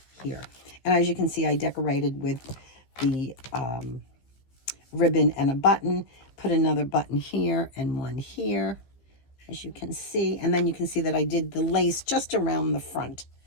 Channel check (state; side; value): late; right; 15 ms